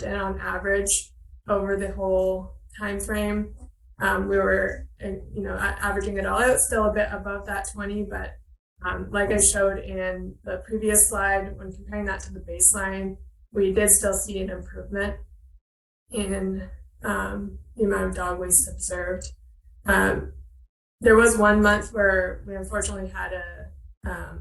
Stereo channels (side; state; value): both; identical; correlation 1.00